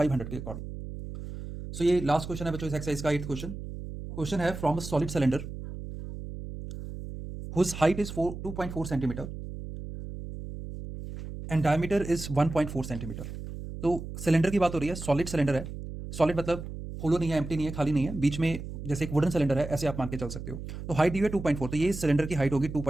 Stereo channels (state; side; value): noise; right; hum, 9 dB below the sound